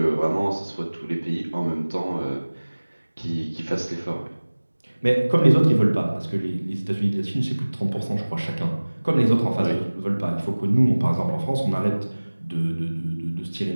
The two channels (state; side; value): inverted; both; correlation -1.00